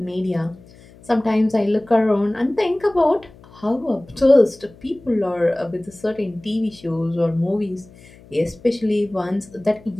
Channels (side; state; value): left; noise; hum, 24 dB below the sound